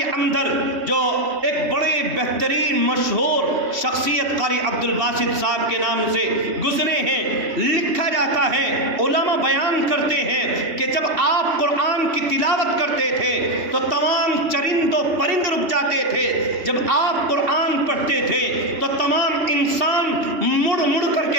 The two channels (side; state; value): left; late; 2.7 ms